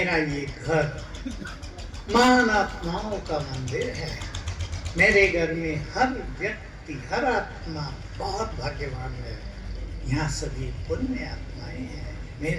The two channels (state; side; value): identical; both; correlation 1.00